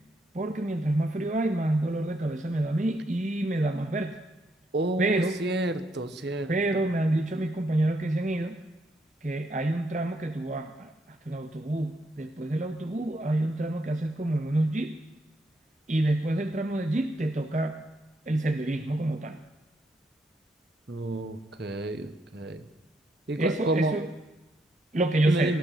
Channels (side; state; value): both; normal; correlation 0.77